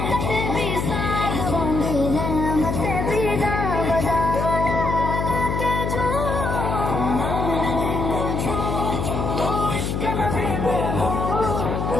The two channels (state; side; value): noise; left; hum, 1 dB below the sound